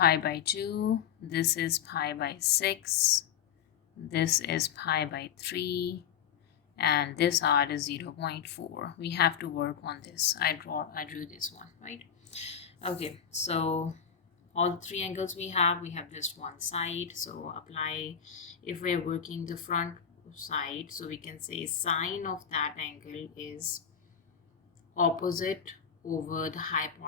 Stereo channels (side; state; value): right; quieter; 8.1 dB